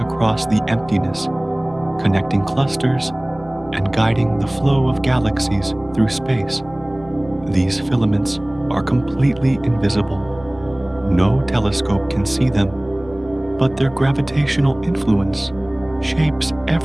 across the emptiness, connecting clusters and guiding the flow of galaxies through space. These filaments are completely invisible. No telescope can see them, but their gravitational influence shapes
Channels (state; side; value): noise; left; hum, 21 dB below the sound